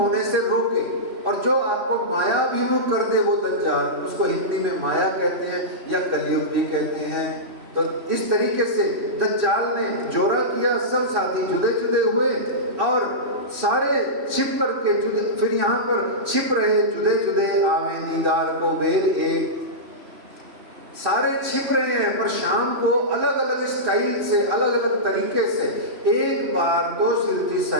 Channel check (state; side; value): late; left; 3.1 ms